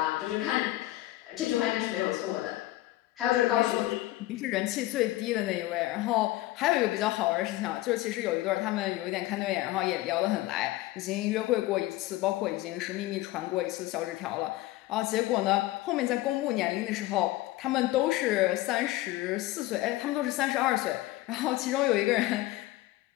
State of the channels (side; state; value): right; quieter; 17.3 dB